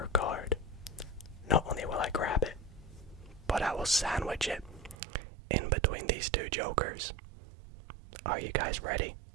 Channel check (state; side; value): drops out; left; at 5.0 s